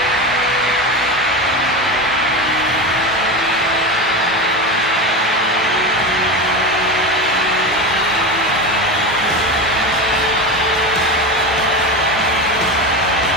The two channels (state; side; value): normal; both; correlation 0.22